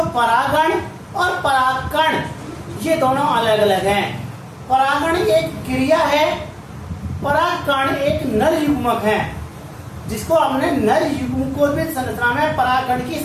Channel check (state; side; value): identical; both; correlation 1.00